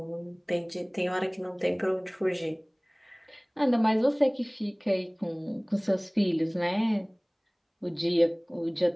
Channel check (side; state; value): both; identical; correlation 1.00